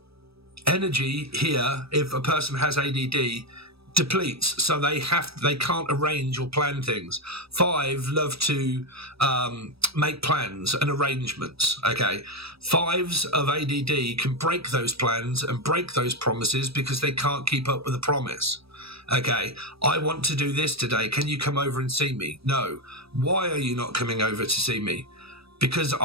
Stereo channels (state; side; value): late; left; 0.77 ms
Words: energy here, if a person has ADD, depletes, so they can't arrange or plan things. 5 love to make plans and arrangements. Okay, 5s of ADD can break those plans and break those promises because they can't keep up with the promise. Okay, I want to do this today. Can you come over and see me? No. Why are you not coming over to see me? Because